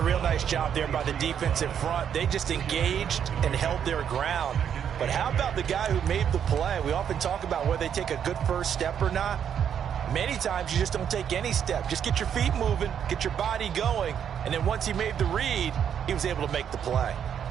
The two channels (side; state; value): left; quieter; 8.6 dB